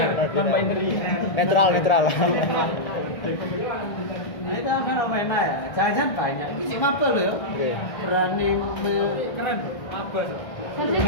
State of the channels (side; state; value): right; late; 1.6 ms